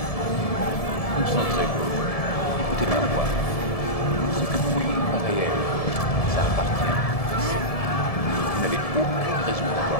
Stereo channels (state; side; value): late; right; 1.7 ms